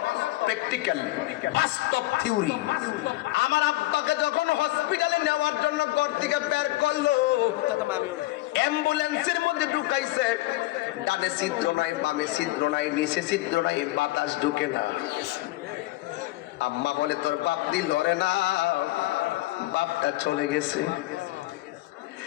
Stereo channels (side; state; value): right; quieter; 18.8 dB